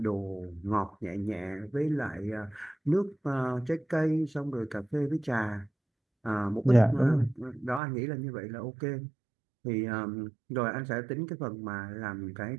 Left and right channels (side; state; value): left; drops out; at 7.8 s